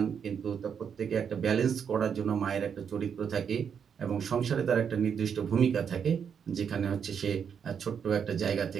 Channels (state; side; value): quieter; left; 7.3 dB